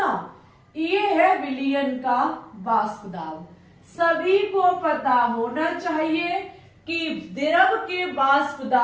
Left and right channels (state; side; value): identical; both; correlation 1.00